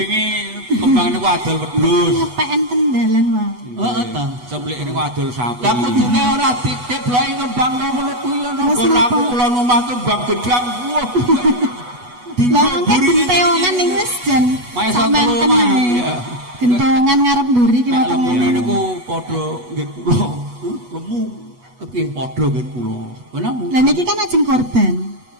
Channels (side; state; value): left; late; 8.2 ms